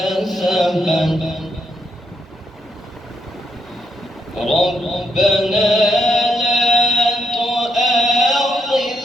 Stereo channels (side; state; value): both; normal; correlation 0.77